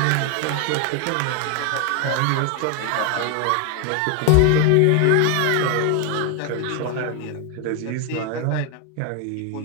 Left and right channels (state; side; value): different; both; correlation 0.01